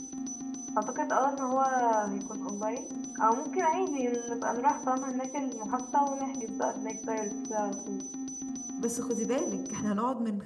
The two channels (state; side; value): identical; both; correlation 1.00